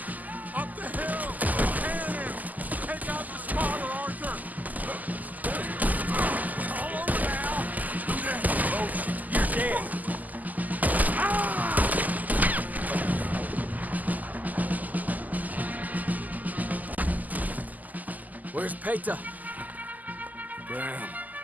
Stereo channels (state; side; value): late; left; 0.081 ms